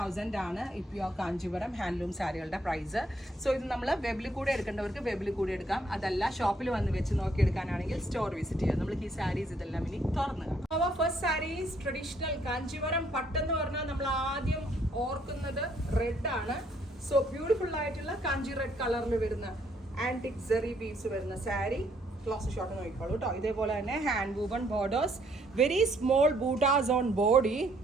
ആണ് ഈ pure Kanchipuram handloom സാരികളുടെ price. So ഇത് നമ്മൾ വെബിൽ കൂടെ എടുക്കേണ്ടവർക്ക് വെബിൽ കൂടെ എടുക്കാം, അതല്ല ഷോപ്പിൽ വന്ന് വെച്ച് നോക്കി എടുക്കാനാണെങ്കിൽ സ്റ്റോർ വിസിറ്റ് ചെയ്യാം. നമ്മൾ ഈ സാരീസ് ഇതെല്ലാം ഇനി തുറന്നു കാണാം. അവർ ഫസ്റ്റ് സാരീസ് ട്രഡീഷണൽ കാഞ്ചീപുരം പട്ടെന്ന് പറഞ്ഞാൽ നമ്മൾ ആദ്യം ഓർക്കുന്നത് റെഡ് ആണ്. സോ ബ്യൂട്ടിഫുൾ ആയിട്ടുള്ള കാഞ്ചി റെഡ് കളറിൽ വരുന്ന ആന്റിക് സെറി ബീഡ്സ് വരുന്ന സാരി. ക്ലോസ് ഷോട്ട് നോക്കിക്കോളൂ കേട്ടോ. ഇതേപോലെ തന്നെ hand woven borders, very small buttas on body,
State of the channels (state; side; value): normal; both; correlation 0.68